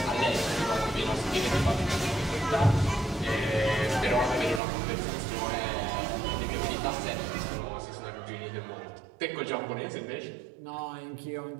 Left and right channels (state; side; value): drops out; left; at 4.6 s